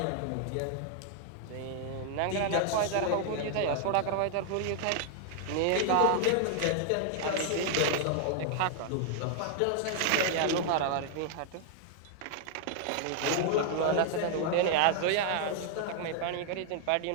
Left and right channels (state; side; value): different; both; correlation 0.00